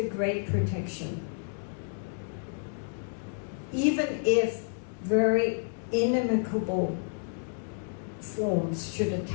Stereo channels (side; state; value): right; silent; 58 dB below the other